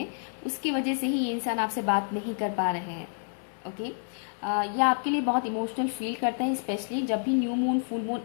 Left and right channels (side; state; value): right; silent; digital silence